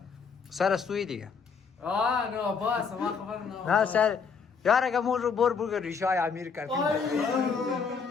سر استوی دیگه نه باس ما خبر نه سر یار اگه مون رو بر ریشای امیر کردیم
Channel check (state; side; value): quieter; right; 5.7 dB